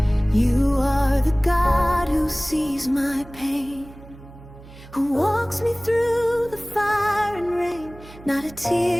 You are the God who sees my pain, who walks me through the fire and rain. Not a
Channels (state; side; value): noise; right; hum, 19 dB below the sound